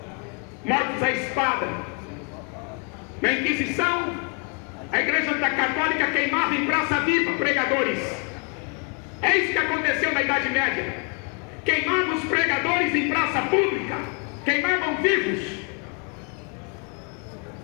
Mortos à espada. Na Inquisição, a Igreja Católica queimava em praça viva pregadores. É isso que aconteceu na Idade Média. Queimava os pregadores em praça pública. queimavam vivos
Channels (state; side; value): quieter; right; 37.3 dB